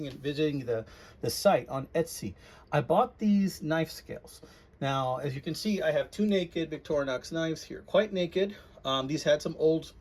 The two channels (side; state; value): both; identical; correlation 1.00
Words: in visiting the site on Etsy. I bought these knife scales. Now, as you can see, I have two naked Victorinox knives here, quite naked. These had some old,